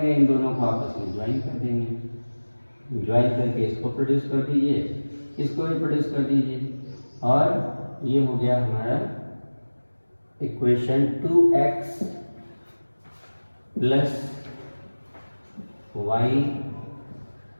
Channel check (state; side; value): inverted; both; correlation -1.00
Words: इन दोनों को आपस में ज्वाइन कर देंगे, ज्वाइन करके इसको प्रोड्यूस कर दीजिए, इसको भी प्रोड्यूस कर दीजिए, और ये हो गया हमारा equation 2x plus y